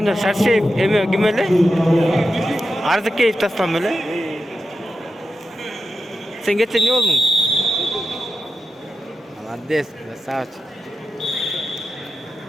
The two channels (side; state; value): both; normal; correlation 0.90